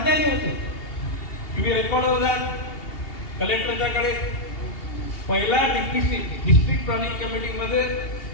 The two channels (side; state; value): right; late; 2.8 ms